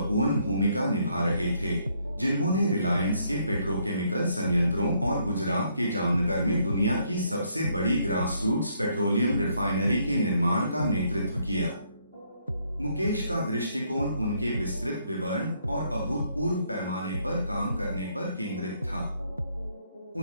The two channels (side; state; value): both; inverted; correlation -0.71